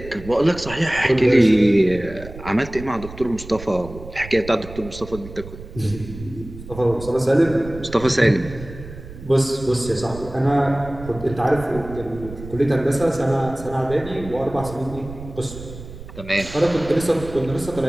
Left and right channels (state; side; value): noise; right; rumble, 14 dB below the sound